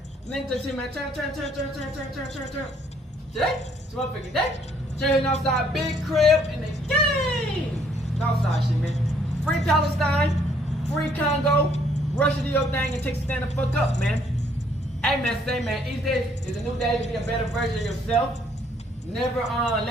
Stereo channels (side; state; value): both; normal; correlation 0.65